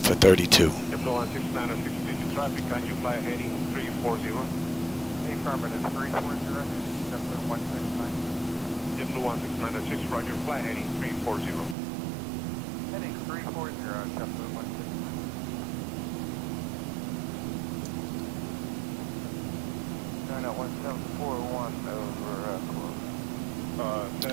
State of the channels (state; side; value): drops out; left; at 11.8 s